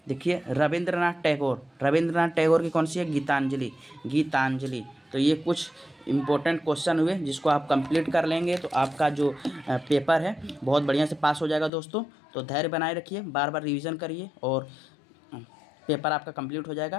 देखिए रविंद्रनाथ टैगोर की कौन सी है, गीतांजलि। तो ये कुछ इम्पोर्टेंट क्वेश्चन हुए जिसको आप कंप्लीट कर लेंगे तो आपका जो पेपर है बहुत बढ़िया से पास हो जाएगा दोस्तों। तो धैर्य बनाए रखिए, बार बार रिवीजन करिए और पेपर आपका कंप्लीट हो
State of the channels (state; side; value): drops out; right; at 11.7 s